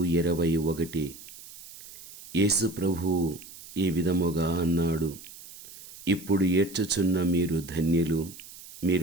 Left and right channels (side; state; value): right; noise; hiss, 17 dB below the sound